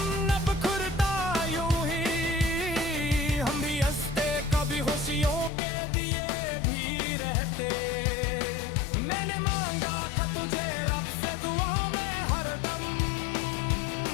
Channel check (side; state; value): right; drops out; at 5.5 s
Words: न बिखरता यूं ही, हम भी हंसते कभी खुशियों के दिए भी रहते। मैंने मांगा था तुझे रब से दुआ में हरदम,